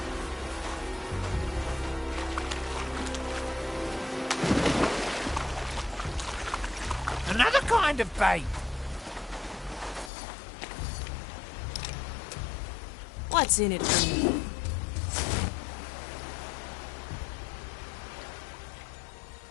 Another kind kind of bait? What's in it for me?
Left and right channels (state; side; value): drops out; right; at 10.1 s